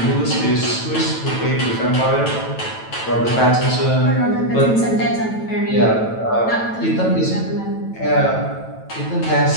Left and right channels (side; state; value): right; late; 9.1 ms